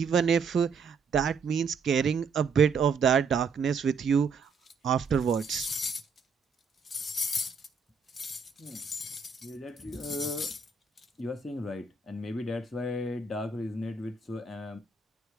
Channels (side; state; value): left; quieter; 5.0 dB